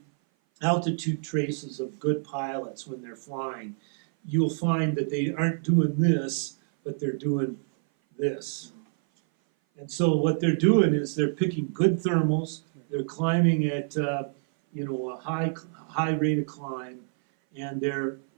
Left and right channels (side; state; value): left; silent; 57 dB below the other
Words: altitude traces of good pilots when they're flying, you'll find that they aren't doing this, but they're doing this. And so what they're doing is they're picking good thermals, they're climbing at a high rate of climb, and they're